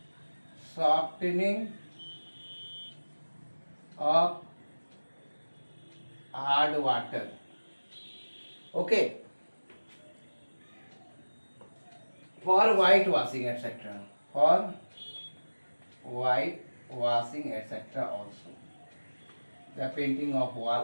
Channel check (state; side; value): inverted; both; correlation -1.00